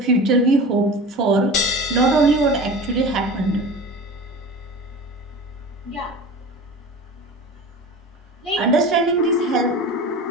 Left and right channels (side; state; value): both; normal; correlation 0.34